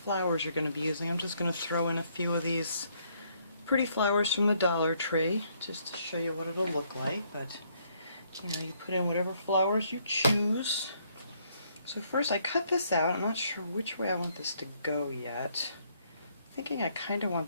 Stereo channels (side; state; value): both; inverted; correlation -0.70